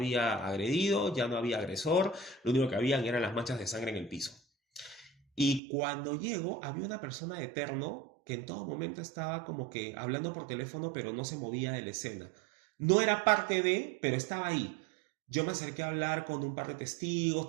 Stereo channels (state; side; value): drops out; left; at 5.6 s